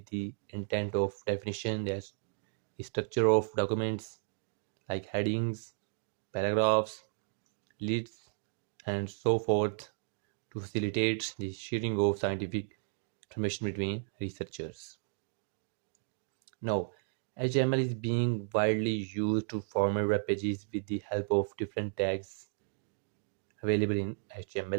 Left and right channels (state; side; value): silent; left; digital silence